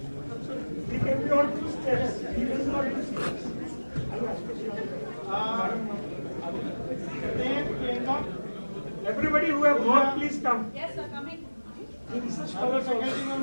We can be on 2 steps. We will not do steps. Everybody who have worked, please come. Yes, sir, coming. The research scholars also.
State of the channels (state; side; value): inverted; both; correlation -1.00